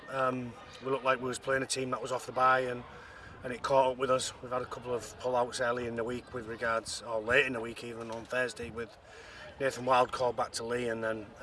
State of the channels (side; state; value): both; identical; correlation 1.00